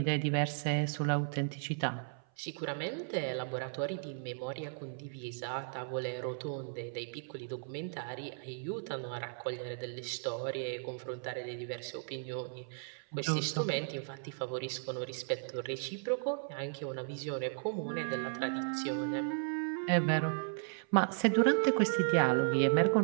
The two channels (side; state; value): left; silent; 54 dB below the other